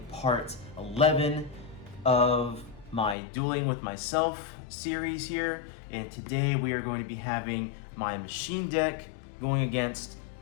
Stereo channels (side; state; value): right; drops out; at 3.2 s